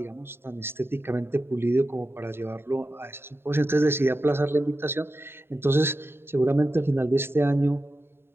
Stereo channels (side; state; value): left; late; 0.11 ms